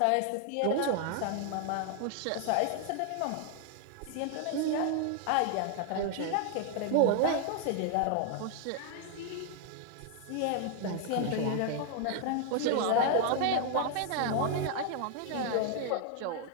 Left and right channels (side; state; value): both; different; correlation 0.00